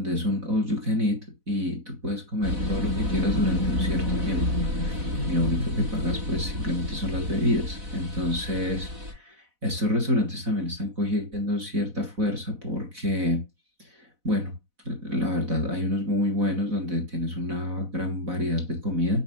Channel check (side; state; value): left; late; 4.0 ms